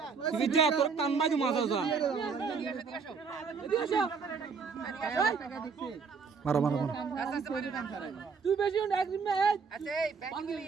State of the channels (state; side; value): quieter; left; 5.4 dB